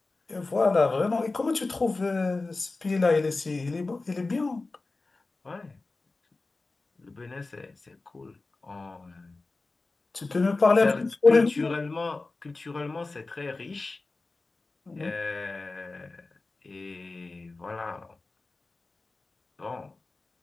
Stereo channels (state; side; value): quieter; right; 3.5 dB